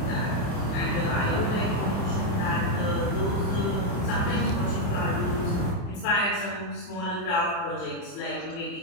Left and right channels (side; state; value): right; late; 28 ms